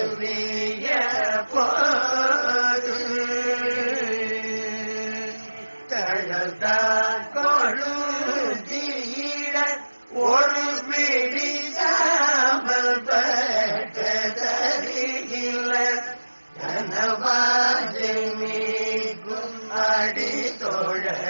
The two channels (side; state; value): both; inverted; correlation -1.00